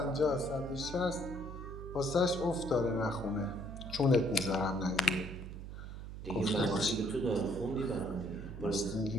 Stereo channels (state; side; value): noise; right; hum, 9 dB below the sound